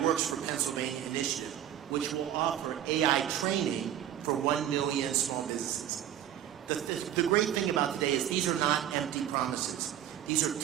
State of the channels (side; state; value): left; quieter; 11.0 dB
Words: Works for Pennsylvania initiative, which will offer AI training for 1 million small businesses. The great thing about today is these are not empty promises. These are